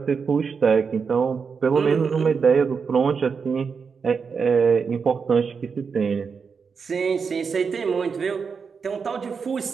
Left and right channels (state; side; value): quieter; left; 5.7 dB